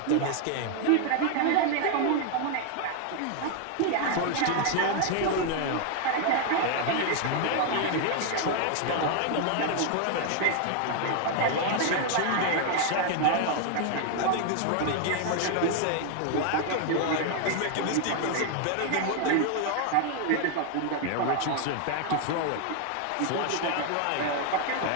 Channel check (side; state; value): both; different; correlation 0.00